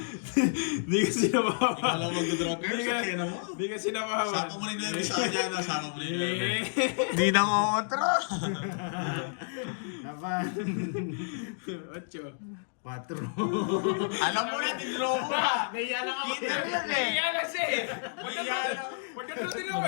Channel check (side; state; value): right; silent; digital silence